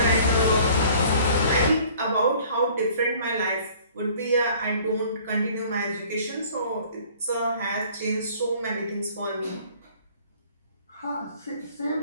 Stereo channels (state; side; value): inverted; both; correlation -0.52